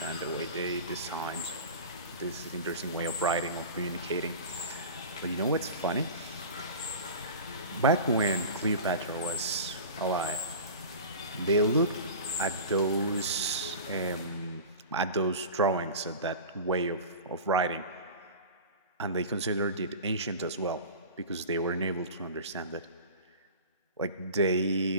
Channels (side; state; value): both; inverted; correlation -0.35